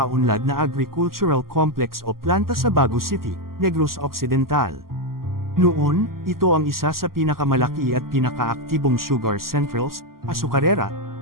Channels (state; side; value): late; left; 0.92 ms